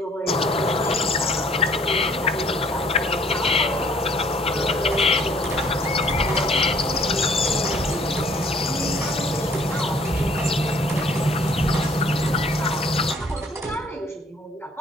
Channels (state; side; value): normal; both; correlation 0.59